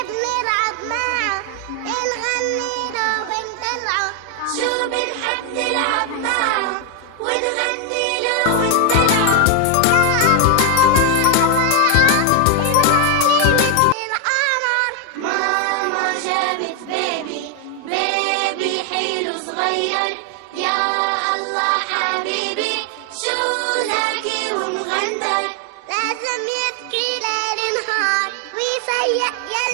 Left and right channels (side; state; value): both; different; correlation 0.01